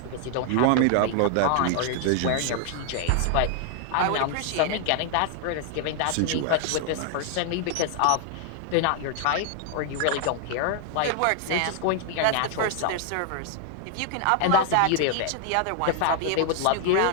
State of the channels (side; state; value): both; different; correlation 0.00